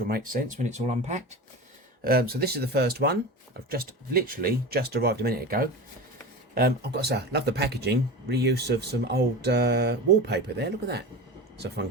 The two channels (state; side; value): normal; both; correlation 0.29